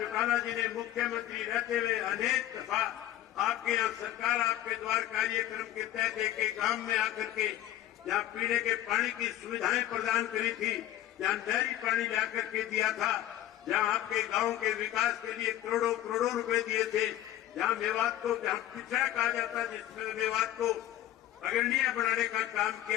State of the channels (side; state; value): right; quieter; 13.3 dB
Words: जी ने मुख्यमंत्री रहते हुए अनेक दफा आपके यहाँ सरकार आपके द्वार कार्यक्रम के तहत एक गांव में आकर के जहाँ पीने के पानी की सुविधाएं प्रदान करी थी, जहाँ नहरी पानी लाकर के दिया था, जहाँ आपके गांव के विकास के लिए करोड़ों करोड़ों रुपए दिए थे, जहाँ मेवात को जहाँ पिछड़ा कहा जाता जिसमें मेवात को अग्रणीय बनाने का काम